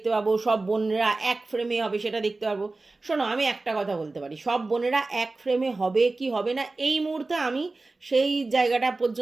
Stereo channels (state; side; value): quieter; left; 3.4 dB